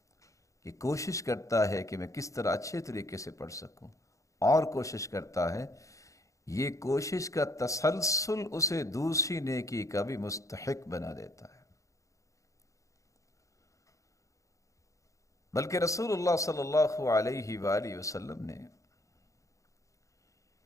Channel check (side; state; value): right; late; 0.15 ms